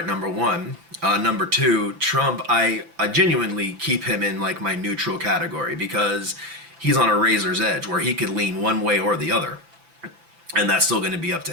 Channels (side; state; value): left; late; 5.9 ms